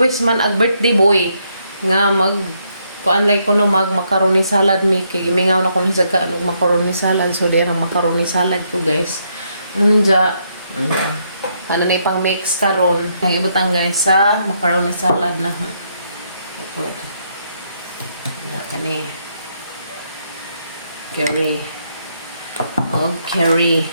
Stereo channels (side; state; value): both; inverted; correlation -0.75